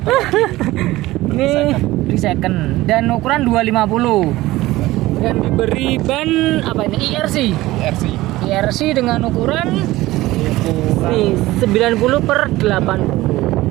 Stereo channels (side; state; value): left; quieter; 17.7 dB